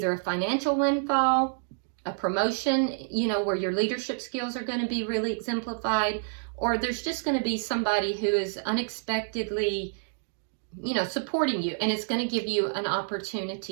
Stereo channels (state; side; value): silent; left; digital silence